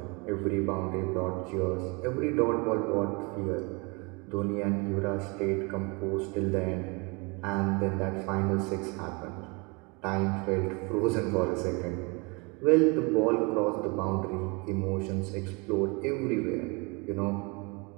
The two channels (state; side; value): quieter; left; 29.6 dB